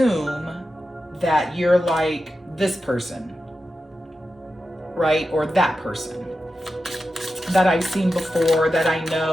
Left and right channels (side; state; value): both; normal; correlation 0.91